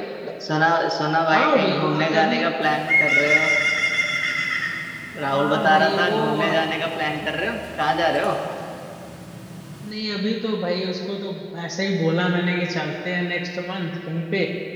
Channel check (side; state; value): both; identical; correlation 1.00